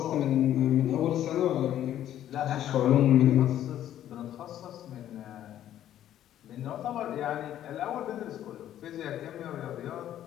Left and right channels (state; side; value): quieter; right; 11.6 dB